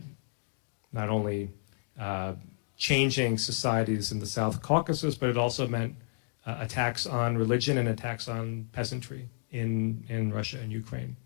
not only changing societies in the South Caucasus, but it also meant attacks on religion and attacks on peasantry in Russia and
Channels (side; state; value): right; silent; digital silence